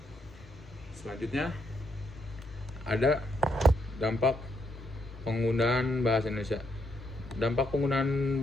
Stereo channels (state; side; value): normal; both; correlation 0.76